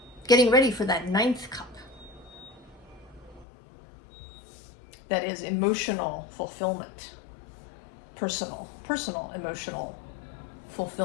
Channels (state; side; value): drops out; right; at 3.5 s